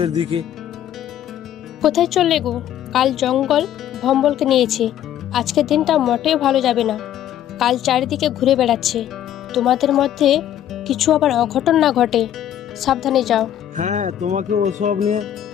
দিকে। কোথায় চললে গো? কাল জঙ্গল ভম্বলকে নিয়েছে। আজকের দিনটা মোটেও ভালো যাবে না। কাল চারিদিকে ঘুরে বেড়াচ্ছে। তোমাদের মধ্যে কিছু আবার অঘটন না ঘটে, সাবধানে যাও। হ্যাঁ, তোমাকে ওসব নিয়ে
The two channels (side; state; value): right; quieter; 11.0 dB